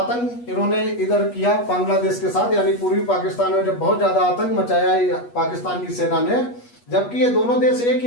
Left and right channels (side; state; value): right; late; 8.3 ms